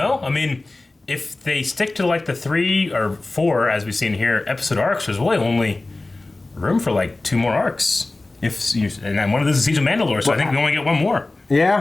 I mean, if they stick to like the 3 or 4, as we've seen here, episode arcs, there's really only room for like 2 more arcs. And then one of those is Siege of Mandalore, so I think we only get 1 more.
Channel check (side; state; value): right; quieter; 3.1 dB